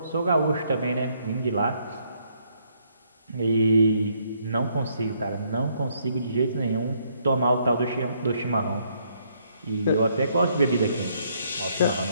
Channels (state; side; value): inverted; both; correlation -0.70